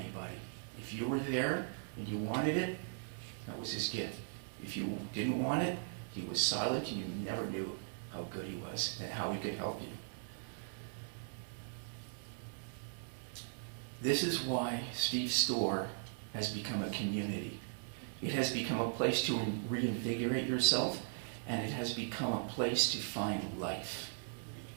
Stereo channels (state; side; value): silent; left; digital silence